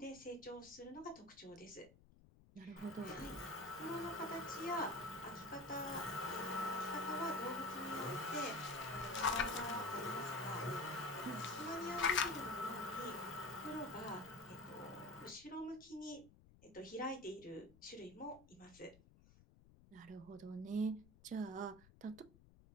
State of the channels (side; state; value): left; noise; rumble, 23 dB below the sound